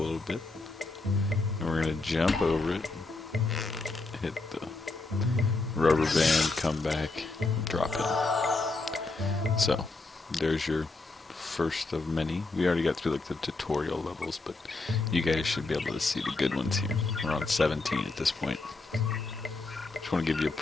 bit. And we're gonna jump over it, hit the rubber band, come back, drop it. So, there's your first of many. We already got through like the tutorial levels, but you guys should be able to see the good ones here. We're on 17 at this point. Just want to give you a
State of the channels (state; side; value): quieter; right; 3.4 dB